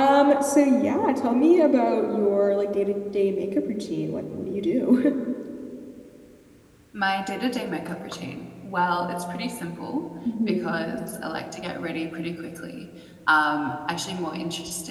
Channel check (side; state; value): both; identical; correlation 1.00